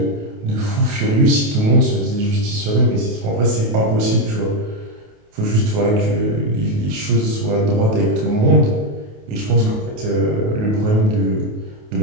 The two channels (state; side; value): late; left; 28 ms